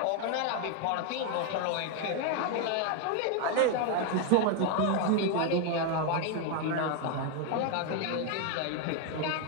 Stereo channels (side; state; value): both; different; correlation 0.01